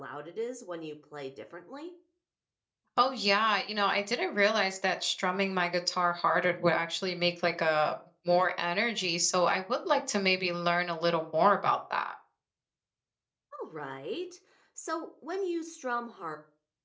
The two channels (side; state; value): both; identical; correlation 1.00